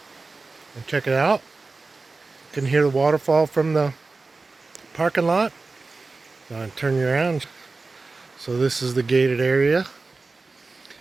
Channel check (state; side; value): quieter; left; 3.8 dB